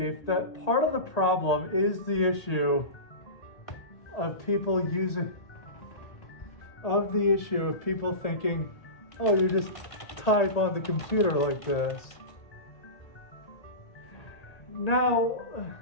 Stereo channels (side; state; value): right; late; 1.8 ms